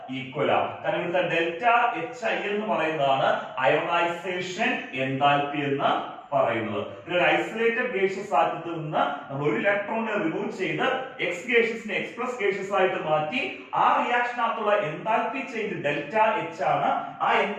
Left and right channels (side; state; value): both; identical; correlation 1.00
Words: ഈക്വൽ ആണ്. കാരണം ഇവിടുത്തെ ഡെൽറ്റ എച്ച് ഐ എന്ന് പറയുന്നതാണ് അയോണൈസേഷൻ എൻതാൽപ്പി എന്ന് പറയുന്നത്. ഒരു ഐസൊലേറ്റഡ് ഗേഷ്യസ് ആറ്റത്തിൽ നിന്ന് നമ്മൾ ഒരു ഇലക്ട്രോണിനെ റിമൂവ് ചെയ്ത് എക്സ് ഗേഷ്യസിനെ എക്സ് പ്ലസ് ഗേഷ്യസ് ആയിട്ട് മാറ്റി. ആ റിയാക്ഷനകത്തുള്ള എൻതാൽപ്പി ചേഞ്ച് ഡെൽറ്റ എച്ച് ആണ്. ആ